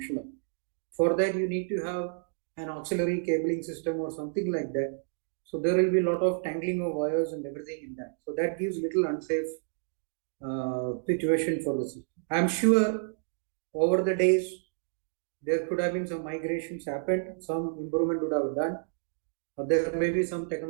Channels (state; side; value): silent; left; digital silence